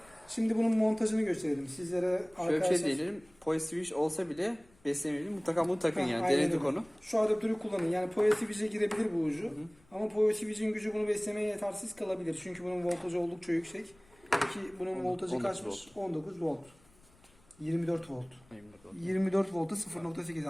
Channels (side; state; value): left; noise; rumble, 29 dB below the sound